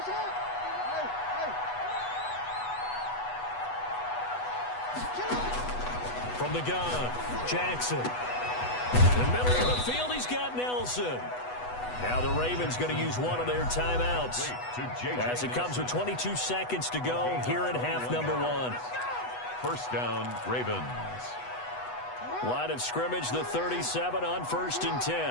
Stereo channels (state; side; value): late; right; 8.1 ms